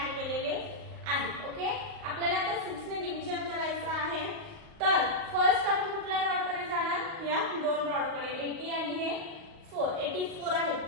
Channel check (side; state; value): left; late; 38 ms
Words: केलेले आहे। ओके, आपल्याला आता 6 ने डिव्हिजन करायचं आहे। तर फर्स्ट आपण कुठल्या रॉड कडे जाणार, या दोन रॉड कडे 80 आणि हे 84 आहे,